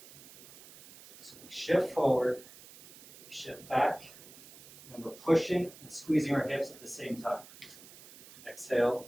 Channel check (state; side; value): noise; right; hiss, 20 dB below the sound